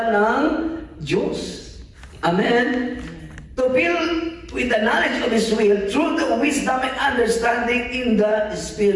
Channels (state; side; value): identical; both; correlation 1.00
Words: ng Diyos. Amen? To fill with the knowledge of His will through the wisdom and understanding in the